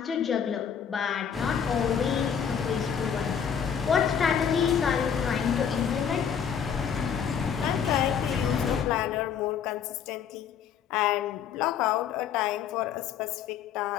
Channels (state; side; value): quieter; right; 7.8 dB